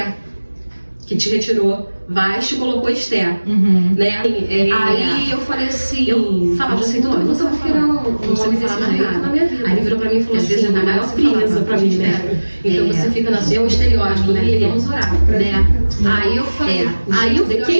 que te retirou Vasti e colocou Esther, né? Aí eu falei assim, eu falava assim, eu nunca vou virar um homem desse jeito na minha vida. Aí ele virou pra mim e falou assim, é a maior presa pra mim, né? Então você fica na sua estereótipo, né? Vamos orar, né? Aí eu falei, aí eu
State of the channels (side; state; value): both; inverted; correlation -1.00